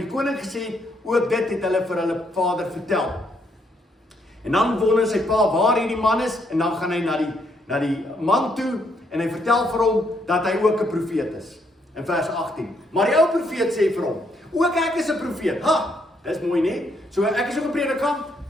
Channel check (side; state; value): both; normal; correlation 0.73